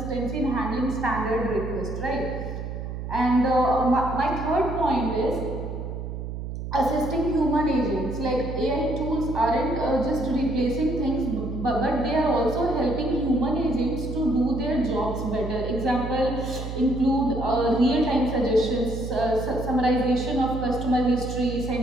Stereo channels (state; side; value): noise; right; hum, 6 dB below the sound